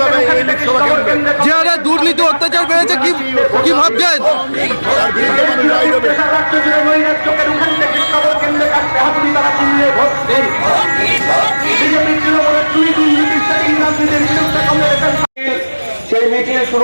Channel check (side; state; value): both; inverted; correlation -1.00